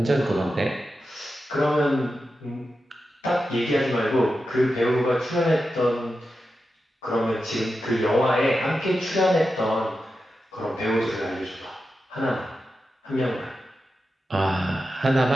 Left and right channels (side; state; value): both; normal; correlation 0.90